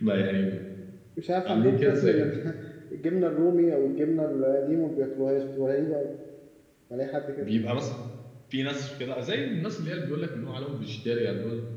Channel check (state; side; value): identical; both; correlation 1.00